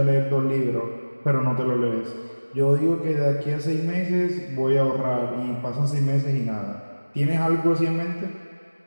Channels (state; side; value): inverted; both; correlation -1.00